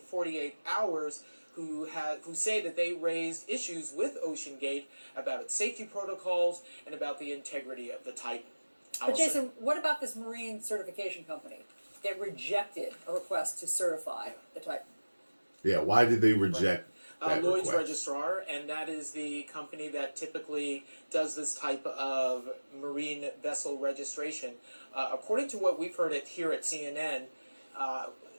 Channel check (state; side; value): inverted; both; correlation -1.00